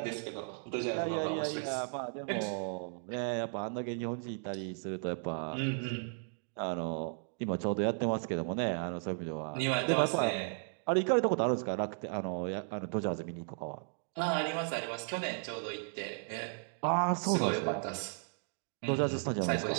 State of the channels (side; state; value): left; silent; 54 dB below the other